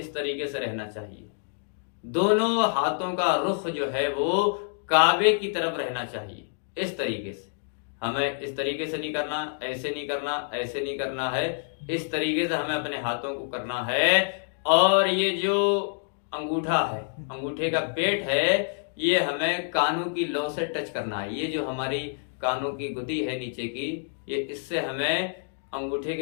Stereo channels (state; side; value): silent; right; digital silence